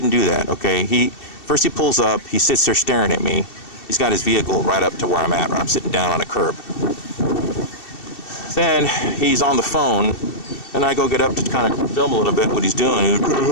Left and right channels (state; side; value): late; right; 2.7 ms